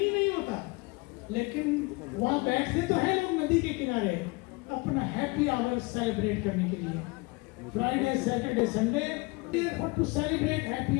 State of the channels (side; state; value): right; quieter; 26.6 dB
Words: नहीं होता। लेकिन वहाँ बैठते तो है लोग नदी के किनारे अपना हैप्पी आवर सेलिब्रेट करने के लिए। Friday Saturday Sunday to celebrate happy